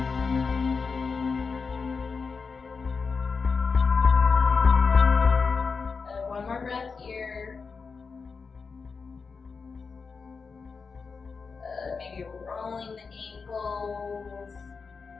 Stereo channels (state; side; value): quieter; right; 5.0 dB